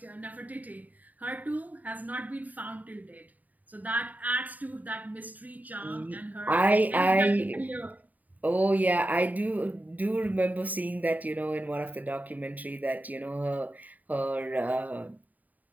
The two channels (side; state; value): left; late; 0.078 ms